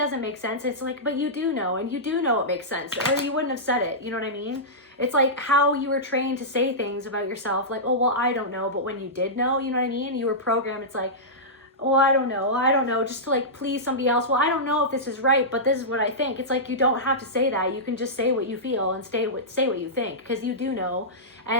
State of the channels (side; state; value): both; normal; correlation -0.14